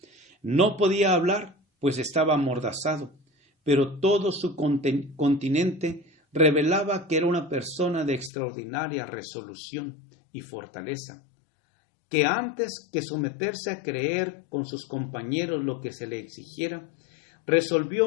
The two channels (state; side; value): drops out; right; at 8.3 s